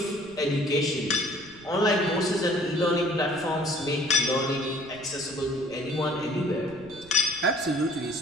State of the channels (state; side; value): noise; right; rumble, 23 dB below the sound